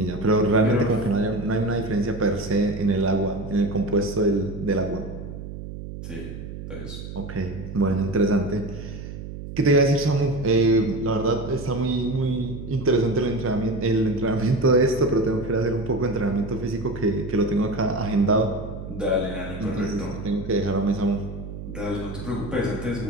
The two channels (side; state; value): right; noise; hum, 10 dB below the sound